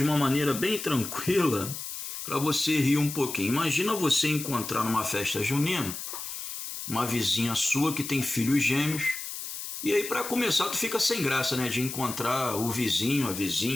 uma maneira bem tranquila, para você rir um pouquinho. Imagina você encontrar numa festa junina uma vizinha sua que tem filhos gêmeos, e aí para começar tu fica sem graça, né, de encontrar o vizinho, a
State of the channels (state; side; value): noise; left; hiss, 7 dB below the sound